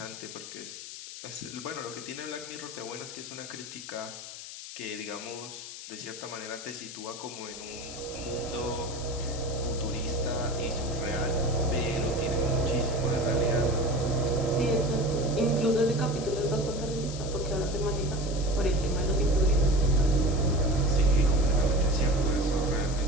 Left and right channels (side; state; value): left; noise; hiss, 11 dB below the sound